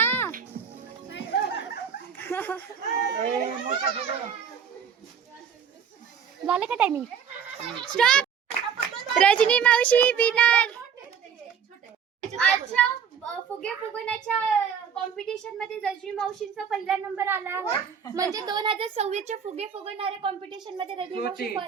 झालं का टायमिंग? स्टॉप. रजनी मावशी विनर. आजच्या फुगे फुगवण्याच्या कॉम्पिटिशन मध्ये रजनी मावशींचा पहिला नंबर आला आहे. म्हणजे 2026 च्या फुगे फुगवणाऱ्या कॉम्पिटिशन मध्ये रजनी मावशी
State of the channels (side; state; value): left; quieter; 7.3 dB